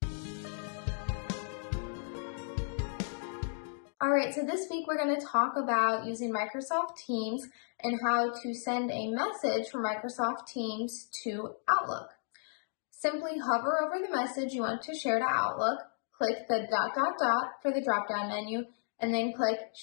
Alright, so this week we're going to talk about using Microsoft Teams and how to send a message from Microsoft Teams to Outlook. Simply hover over the message you want to share to Outlook, click the ... for the drop-down menu, and then click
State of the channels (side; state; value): right; silent; digital silence